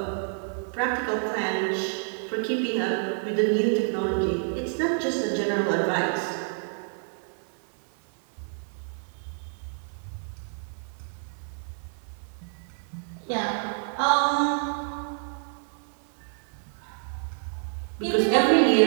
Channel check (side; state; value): left; silent; 59 dB below the other